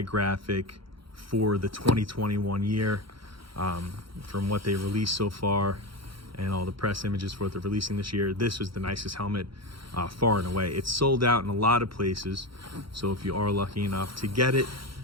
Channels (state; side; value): late; left; 0.74 ms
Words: graphic for the 2021 year. From what they released so far and all the press images for what they're releasing this year, this was the nicest helmet far and away. It's sold out in a lot of places, so if you are lucky enough to get it